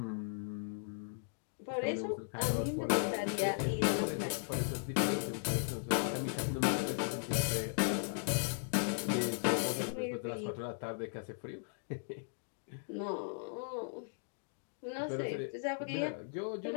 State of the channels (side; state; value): right; silent; digital silence